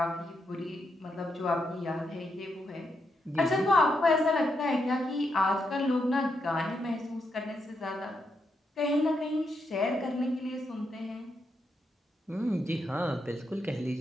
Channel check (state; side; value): normal; both; correlation 0.82